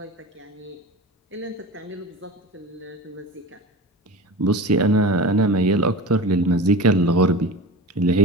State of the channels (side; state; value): both; normal; correlation 0.32